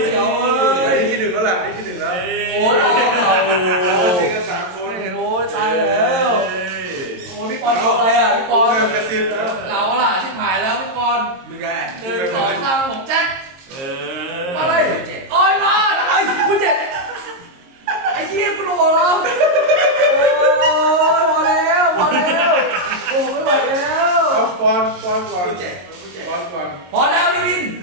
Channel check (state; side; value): late; left; 22 ms